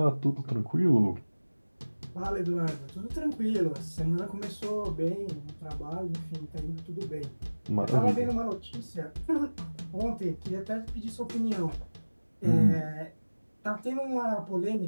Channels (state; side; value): inverted; both; correlation -1.00